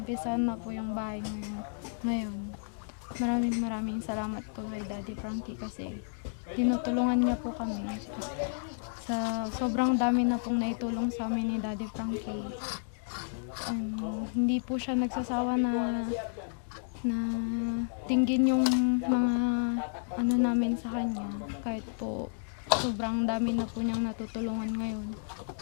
na po yung bahay ngayon. Maraming salamat po kay Daddy Frankie kasi tinutulungan niya po kami. Sa sobrang dami na pong naitulong sa amin ni Daddy Frankie. Hindi po siya nagsasawa na tingin yung mga ano namin sa kanya. Kahit po sobrang dami na po niyang natutulungan ngayon.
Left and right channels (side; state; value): right; silent; digital silence